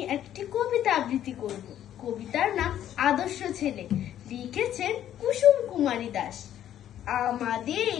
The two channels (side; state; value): right; quieter; 11.2 dB